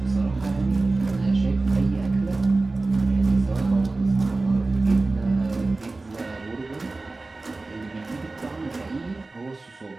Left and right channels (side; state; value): left; quieter; 3.4 dB